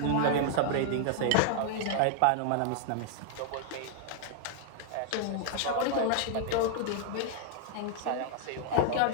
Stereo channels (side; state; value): both; different; correlation 0.00